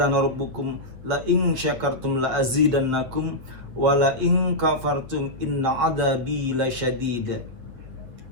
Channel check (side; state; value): left; late; 8.2 ms